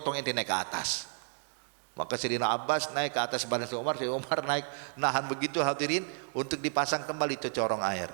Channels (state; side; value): silent; left; 57 dB below the other